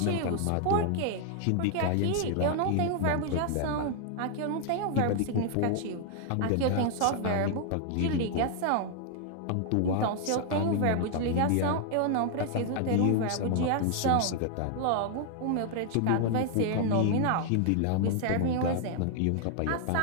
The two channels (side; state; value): both; different; correlation 0.00